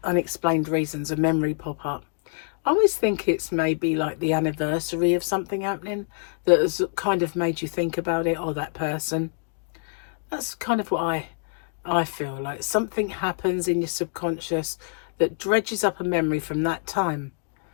unexplained reasons, a memory pop up. I always think it's maybe like the anniversary of something happening that has kind of made you think about it, or that person. That's kind of what I feel like. Something happens in your subconscious that dredges up a memory from that time.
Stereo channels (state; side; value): silent; right; 61 dB below the other